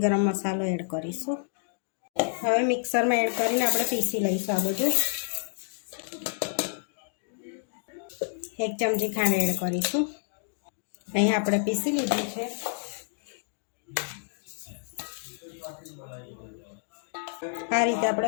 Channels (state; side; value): silent; right; digital silence